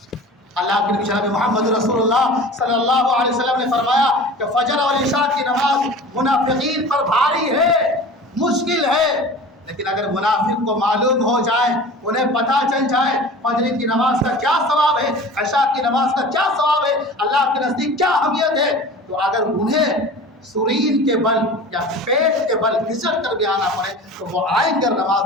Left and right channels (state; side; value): normal; both; correlation 0.38